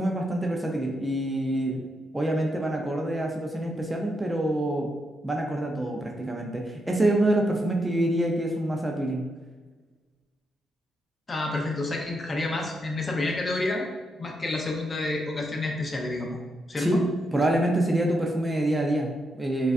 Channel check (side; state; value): both; normal; correlation 0.82